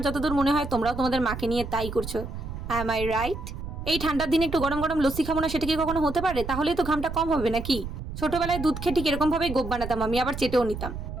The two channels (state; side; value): noise; right; rumble, 8 dB below the sound